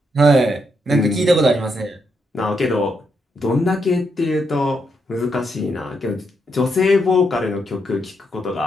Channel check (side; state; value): both; normal; correlation 0.80